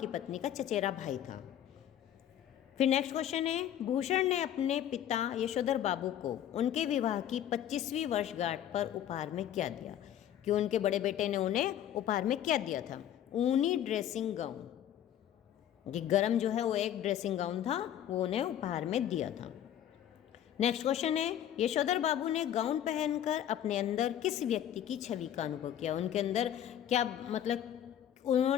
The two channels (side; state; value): right; quieter; 10.8 dB